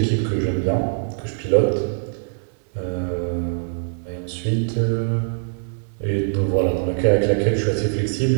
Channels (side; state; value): left; silent; digital silence